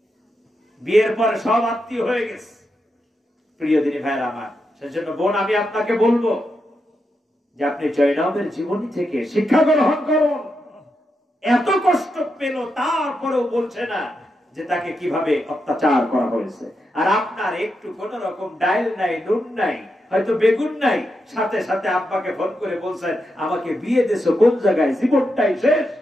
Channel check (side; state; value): both; normal; correlation 0.85